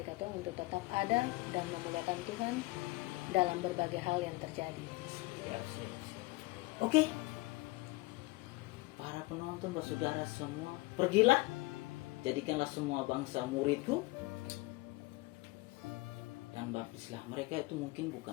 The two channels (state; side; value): quieter; right; 22.0 dB